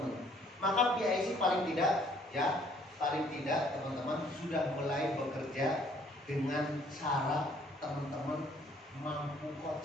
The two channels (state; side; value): normal; both; correlation 0.61